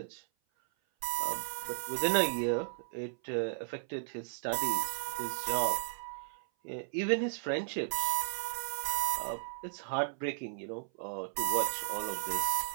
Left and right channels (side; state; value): left; silent; 54 dB below the other